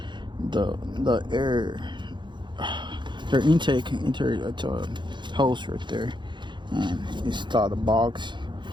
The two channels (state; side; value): late; left; 0.23 ms